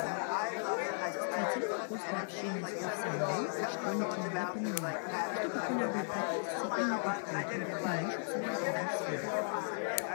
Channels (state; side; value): silent; right; digital silence